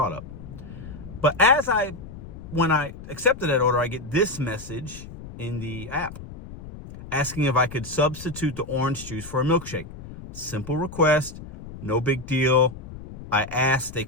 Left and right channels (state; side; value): noise; left; rumble, 14 dB below the sound